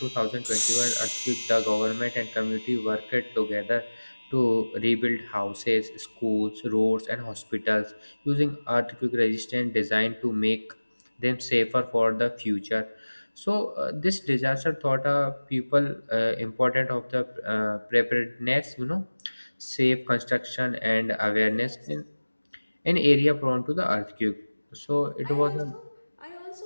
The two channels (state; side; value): inverted; both; correlation -1.00